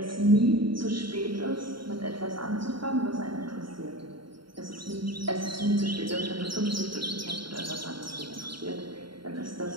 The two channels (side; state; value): left; late; 0.73 ms